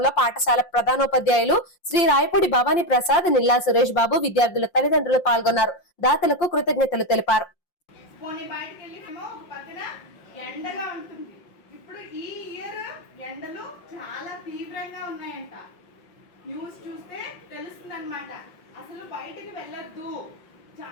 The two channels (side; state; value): right; late; 5.7 ms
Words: పాఠశాల ప్రధానోపాధ్యాయులు శ్రీ రాయపూడి భవానీ ప్రసాద్, నిల్లా సురేష్ బాబు, విద్యార్థుల తల్లిదండ్రులు పాల్గొన్నారు. దాతలకు కృతజ్ఞతలు తెలిపారు. ఎండగా ఉంటుంది. ఇప్పుడు ఈ ఇయర్ ఎండలు చాలా తీవ్రంగా ఉన్నాయంట. న్యూస్ చూస్తే తెలుస్తుంది అనమాట. అసలు బయటకు వెళ్ళొద్దు,